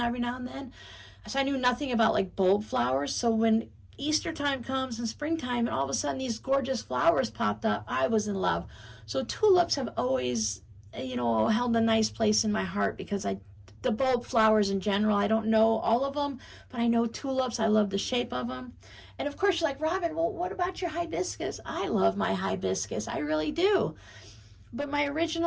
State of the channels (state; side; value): identical; both; correlation 1.00